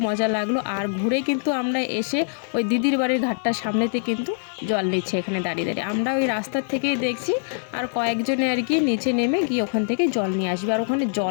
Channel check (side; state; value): right; silent; digital silence